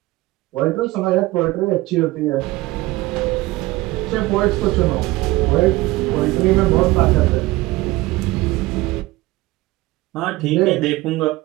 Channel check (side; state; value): left; quieter; 19.3 dB